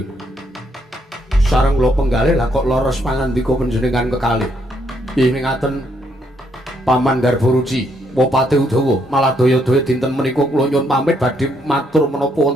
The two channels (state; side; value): normal; both; correlation 0.73